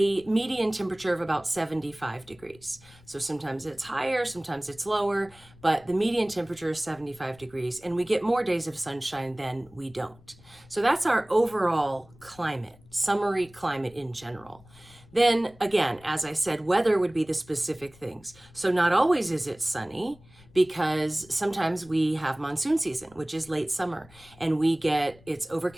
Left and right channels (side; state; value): left; noise; rumble, 25 dB below the sound